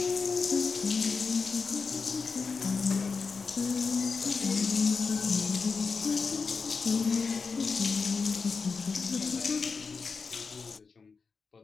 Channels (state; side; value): quieter; right; 4.9 dB